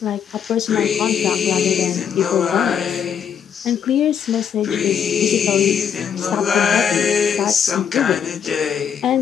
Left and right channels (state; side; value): quieter; right; 7.9 dB